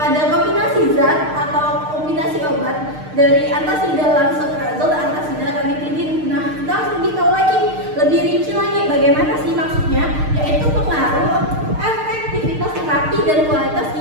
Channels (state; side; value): late; left; 6.6 ms